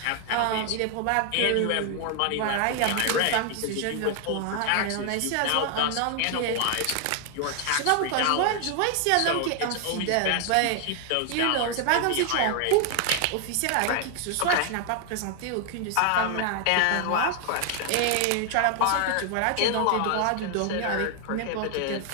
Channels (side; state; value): both; different; correlation 0.00